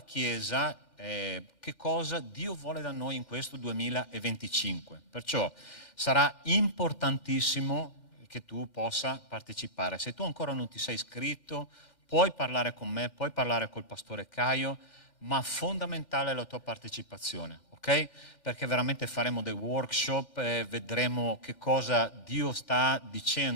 Chiesa che cosa Dio vuole da noi in questo 2025. Perciò sarà importantissimo che tu possa partecipare. Se tu ancora non ti sei iscritto, puoi parlare con me, puoi parlare col pastore Caio, ma fondamentale è la tua partecipazione, ok? Perché veramente faremo dei workshop, vedremo che cosa Dio sta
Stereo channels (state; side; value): late; right; 2.1 ms